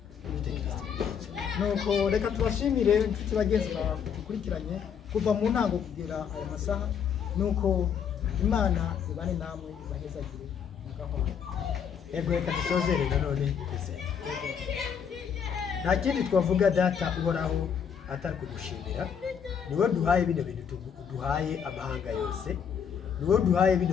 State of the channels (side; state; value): right; quieter; 7.5 dB